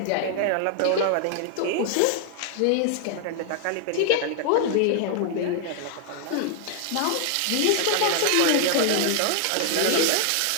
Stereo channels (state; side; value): different; both; correlation 0.00